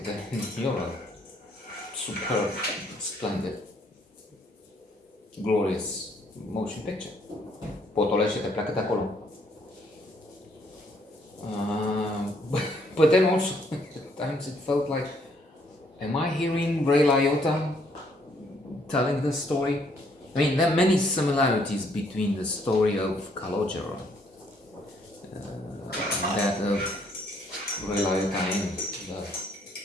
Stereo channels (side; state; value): both; normal; correlation 0.68